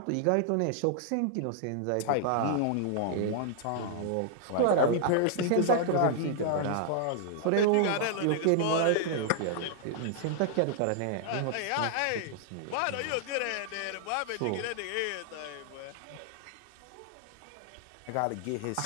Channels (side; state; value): both; different; correlation 0.00